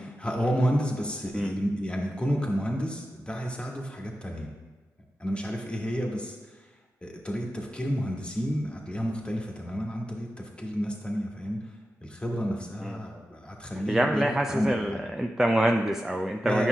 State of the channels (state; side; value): normal; both; correlation 0.92